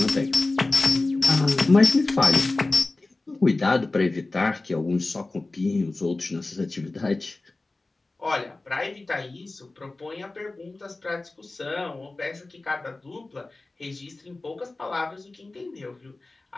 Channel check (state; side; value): quieter; right; 3.2 dB